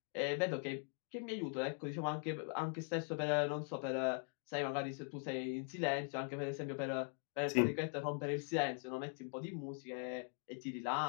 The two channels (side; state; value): right; silent; 50 dB below the other